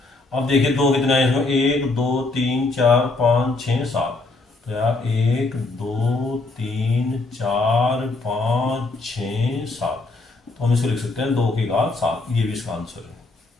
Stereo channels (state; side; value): quieter; right; 3.3 dB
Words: अब देखिए 2 कितने आए इसमें, 1 2 3 4 5 6 7। तो यार 1 2 3 4 5 6 7, तो हम इसको लिख सकते हैं 2 की घात 7। ये भी इसका आंसर है।